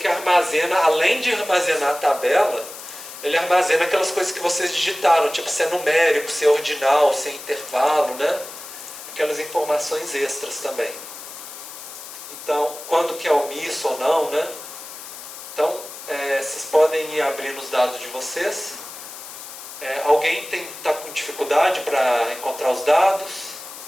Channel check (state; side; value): noise; left; hiss, 13 dB below the sound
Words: armazena, além de armazenar a tabela, ele armazena aquelas coisas que vocês digitaram, tipo se é numérico, se é ordinal, se é intervalo, né? Aquelas informações extras também. Então, quando que é omisso ou não, né? Então, vocês podem ir abrindo os dados de vocês. Alguém está com dificuldade para encontrar os dados?